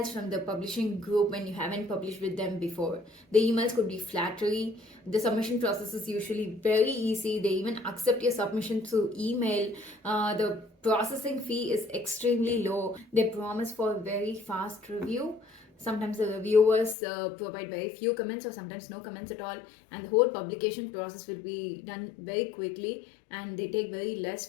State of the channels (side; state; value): right; drops out; at 16.9 s